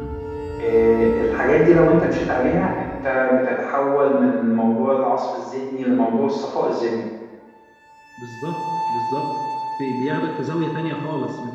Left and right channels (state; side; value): identical; both; correlation 1.00